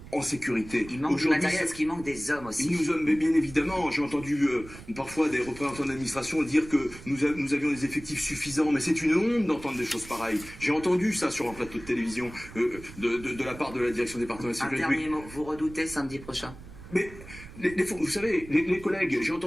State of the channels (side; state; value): right; noise; rumble, 16 dB below the sound